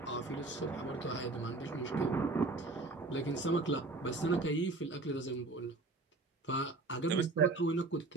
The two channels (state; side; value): quieter; left; 3.3 dB